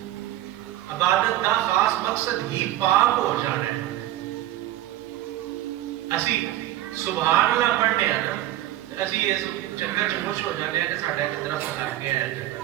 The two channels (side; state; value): left; quieter; 14.6 dB